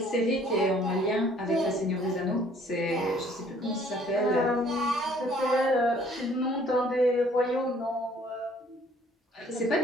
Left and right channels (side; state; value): both; normal; correlation 0.59